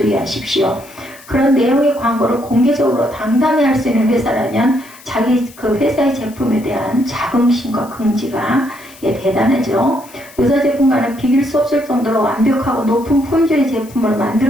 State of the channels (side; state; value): left; noise; hiss, 22 dB below the sound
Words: 그런 내용의 광고를 공개적으로 당당히 할 수 있는 회사라면 자기 그 회사의 제품에 대한 자긍심과 긍지가 대단하죠. 유사 제품과는 비길 수 없을 정도로 완벽하고 높은 품질의 제품을